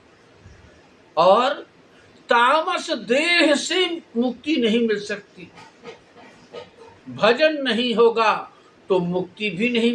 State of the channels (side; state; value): both; identical; correlation 1.00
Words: और तामस देह से मुक्ति नहीं मिल सकती, भजन नहीं होगा तो मुक्ति भी नहीं